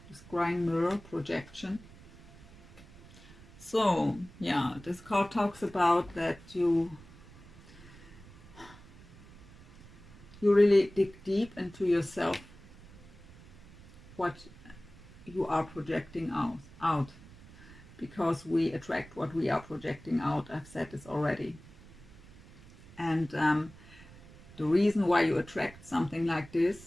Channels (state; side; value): noise; right; rumble, 21 dB below the sound